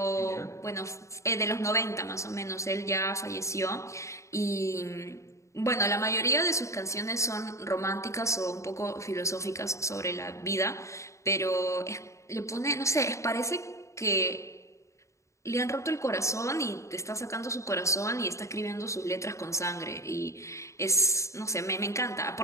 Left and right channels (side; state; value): right; late; 0.14 ms